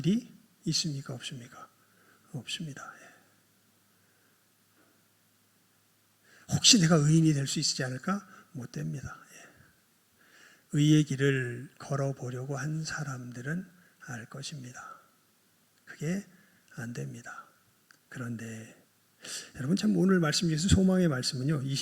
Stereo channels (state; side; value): identical; both; correlation 1.00